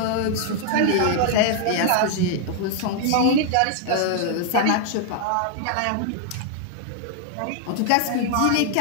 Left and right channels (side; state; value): both; different; correlation 0.00